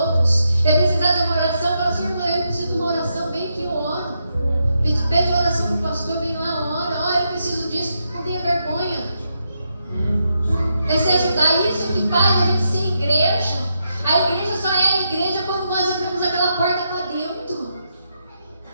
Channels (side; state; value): both; inverted; correlation -0.82